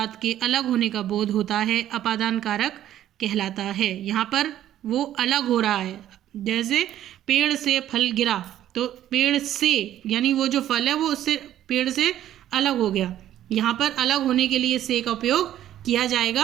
के अलग होने का बोध होता है अपादान कारक कहलाता है। यहाँ पर वो अलग हो रहा है। जैसे पेड़ से फल गिरा, तो पेड़ से यानी वो जो फल है वो उससे पेड़ से अलग हो गया। यहाँ पर अलग होने के लिए से का उपयोग किया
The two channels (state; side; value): quieter; left; 12.1 dB